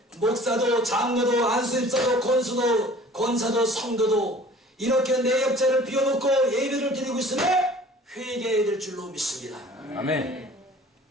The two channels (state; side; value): normal; both; correlation 0.48